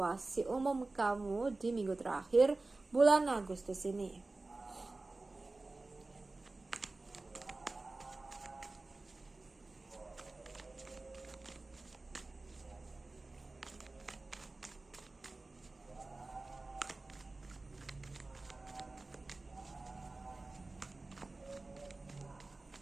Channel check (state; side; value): quieter; left; 3.3 dB